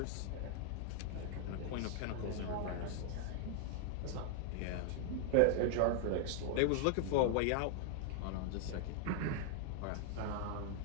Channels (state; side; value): different; both; correlation 0.00